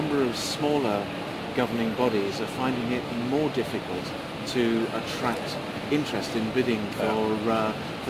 of smaller governing bodies are finding it more difficult to attract interest in bidding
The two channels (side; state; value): both; identical; correlation 1.00